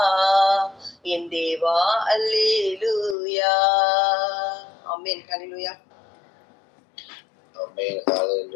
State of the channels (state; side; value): drops out; right; at 3.2 s